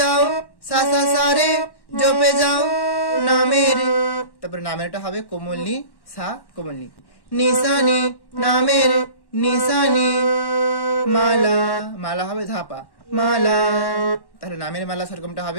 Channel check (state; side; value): late; right; 1.1 ms